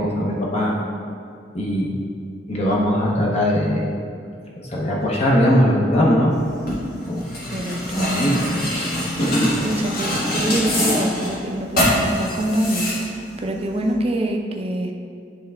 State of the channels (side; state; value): both; normal; correlation 0.64